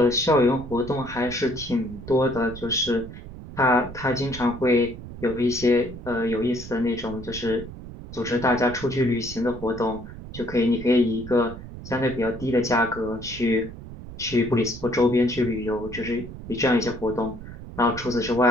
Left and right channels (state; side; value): noise; right; rumble, 13 dB below the sound